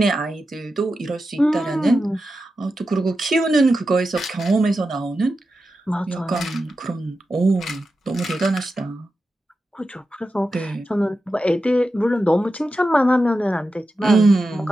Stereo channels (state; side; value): normal; both; correlation 0.90